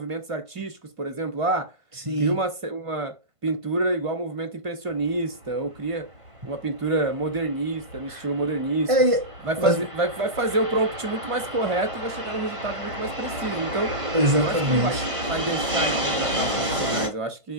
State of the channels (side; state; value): left; late; 1.5 ms